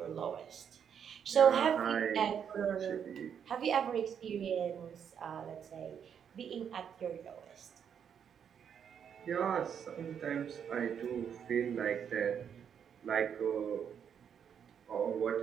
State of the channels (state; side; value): quieter; left; 8.0 dB